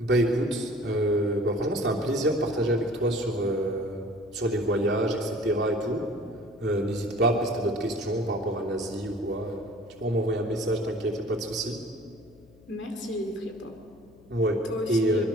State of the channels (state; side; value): noise; left; hum, 26 dB below the sound